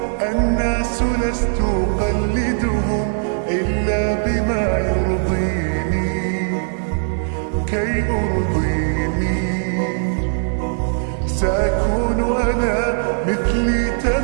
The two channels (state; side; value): silent; left; digital silence